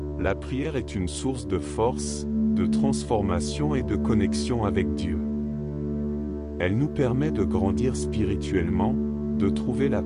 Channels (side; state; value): both; identical; correlation 1.00